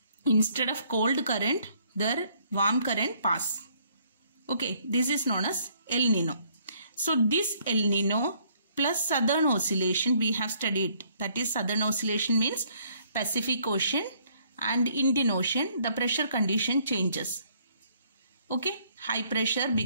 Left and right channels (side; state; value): both; inverted; correlation -0.65